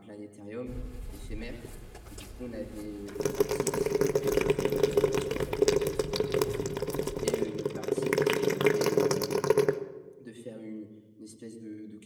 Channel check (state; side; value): identical; both; correlation 1.00